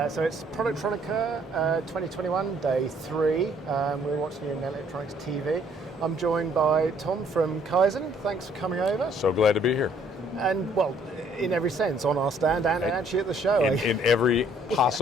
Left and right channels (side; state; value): both; normal; correlation 0.63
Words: So it's Productronica 2021, day 3. We're watching it in Electronics TV. I'm joined by Tom from Kyzen. Thanks for coming over. So glad to be here. And, well, in every sense, on our stand and actually at the show. In every